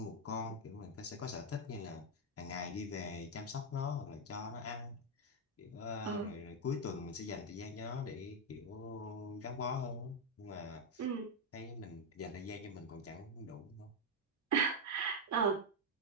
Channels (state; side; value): normal; both; correlation 0.03